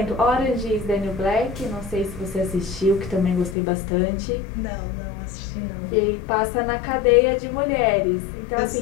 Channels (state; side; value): drops out; right; at 3.6 s